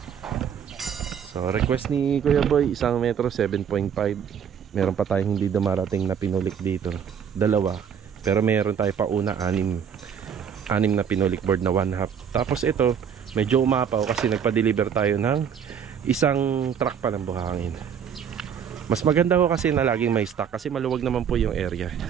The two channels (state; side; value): quieter; left; 7.8 dB